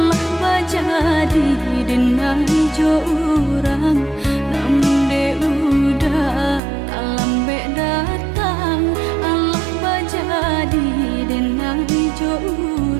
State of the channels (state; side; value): drops out; left; at 6.6 s